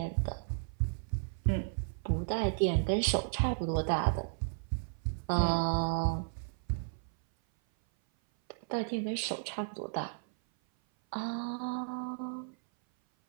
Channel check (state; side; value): silent; left; 55 dB below the other